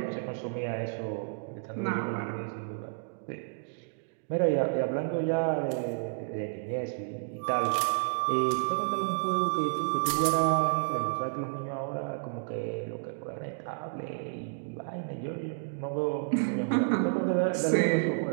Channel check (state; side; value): silent; left; digital silence